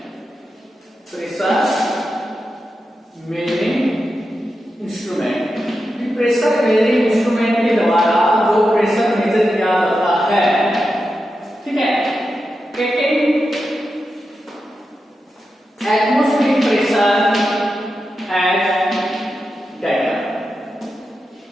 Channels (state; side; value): normal; both; correlation 0.89